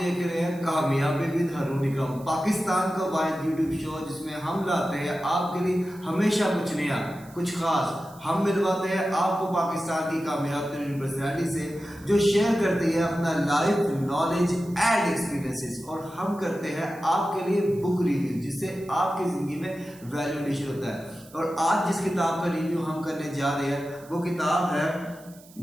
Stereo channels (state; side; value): noise; right; hiss, 24 dB below the sound